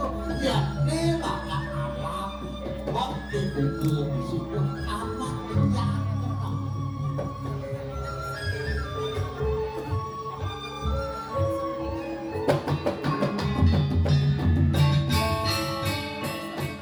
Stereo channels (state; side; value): identical; both; correlation 1.00